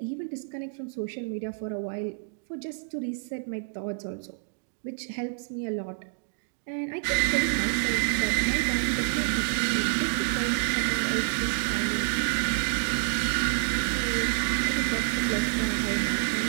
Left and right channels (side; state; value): left; silent; digital silence